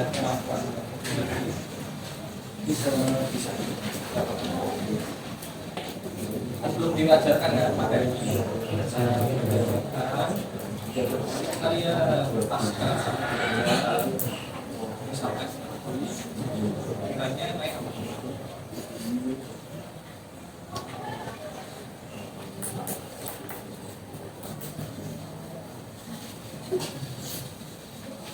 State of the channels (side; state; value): both; identical; correlation 1.00